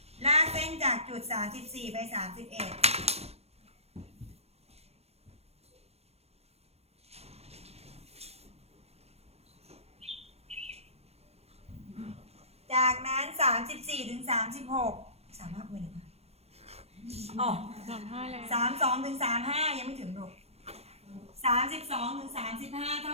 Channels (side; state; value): left; late; 0.30 ms